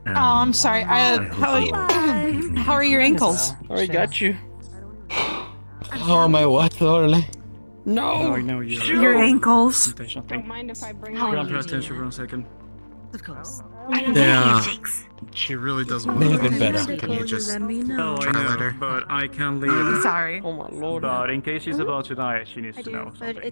I'm sorry. How are your ankles? Already got you. Oh, my what, Orly? No! Your ankles. Don't mind if I bring Pay attention for a second. Of course. Yeah. She really doesn't May want have been to. better. Can you just Oh, I try know, later? but I can't leave. I'm sorry. Oh my lord. But in case she's about to die, she needs to know But something.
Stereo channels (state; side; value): inverted; both; correlation -1.00